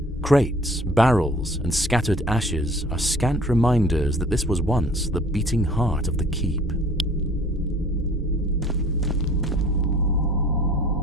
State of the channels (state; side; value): normal; both; correlation 0.51